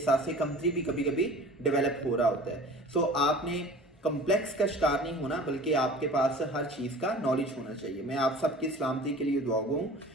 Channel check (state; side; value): normal; both; correlation 0.42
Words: कमतरी भी कभी कभी डेवलप हो रहा होता है। सो आपने कम्प्लेक्स का शिकार नहीं होना, बल्कि आपके पास हर चीज़ का नॉलेज होना चाहिए। मैं आप सबकी सलामती के लिए दुआ हूँ।